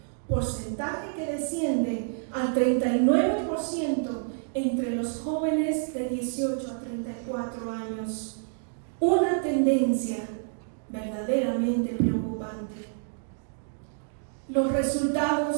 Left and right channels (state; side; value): silent; left; digital silence